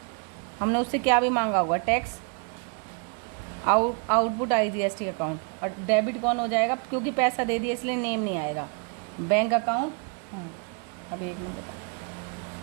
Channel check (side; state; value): left; quieter; 37.1 dB